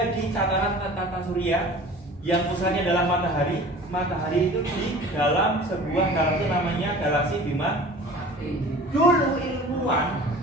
di tataran tata surya yang pusatnya adalah matahari. Matahari itu di dalam sebuah galaksi namanya galaksi Bima. Dulu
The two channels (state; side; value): normal; both; correlation 0.43